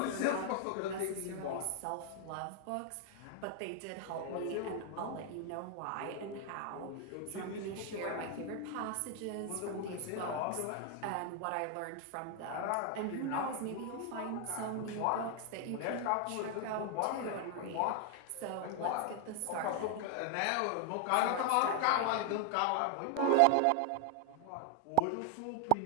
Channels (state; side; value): different; both; correlation 0.00